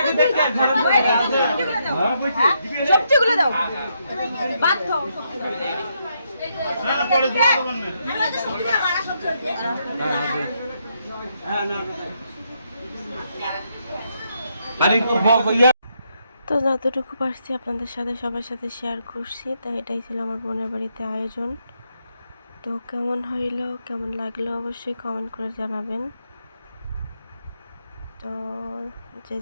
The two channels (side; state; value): both; inverted; correlation -0.78